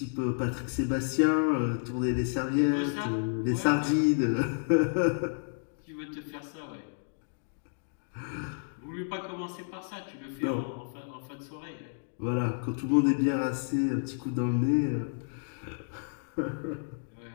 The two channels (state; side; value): silent; right; digital silence